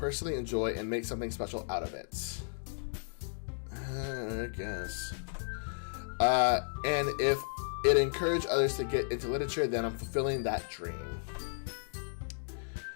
enjoy and make something special out of it. I guess. And if it encouraged others to get into literature, then I'm fulfilling that dream.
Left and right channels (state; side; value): silent; right; digital silence